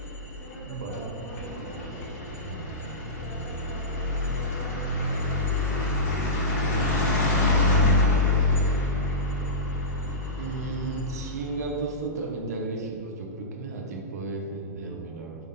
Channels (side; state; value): both; normal; correlation -0.17